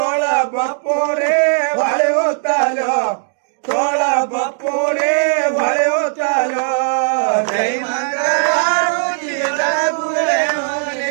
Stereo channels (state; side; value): silent; left; digital silence